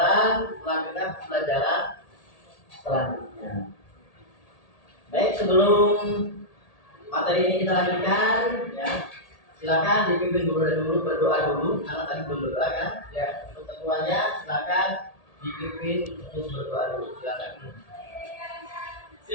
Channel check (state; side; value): late; right; 1.8 ms